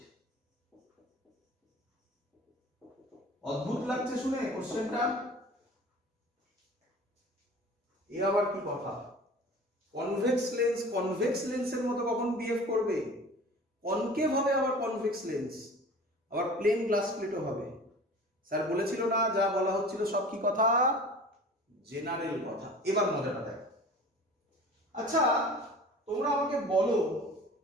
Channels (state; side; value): normal; both; correlation 0.41